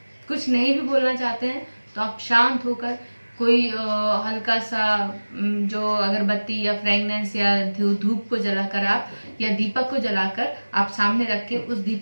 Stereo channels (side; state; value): both; inverted; correlation -1.00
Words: कुछ नहीं भी बोलना चाहते हैं तो आप शांत होकर कोई हल्का सा जो अगरबत्ती या फ्रेगनेंस या धूप को जलाकर आप, या दीपक को जलाकर आप सामने रख के उस